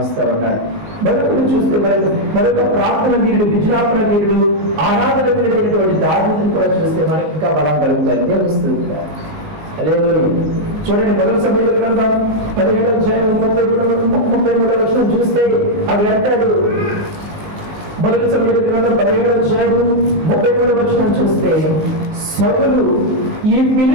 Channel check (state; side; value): late; left; 19 ms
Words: ఇస్తా ఉన్నాడు. మరొకరు చూస్తే మరొక ప్రార్థన వీరుడు, విజ్ఞాపన వీరుడు, ఆరాధన వీరుడైనటువంటి దావీదును కూడా చూస్తే మనకి ఇంకా బలం కలుగుతాయి. దేవస్థలు చూడండి, మొదటి సమయంలో గ్రంథం 17:33 చూస్తే అది అంటాడు. మొదటి సమయంలో గ్రంథం 17:33 చూస్తే, సౌలు ఈ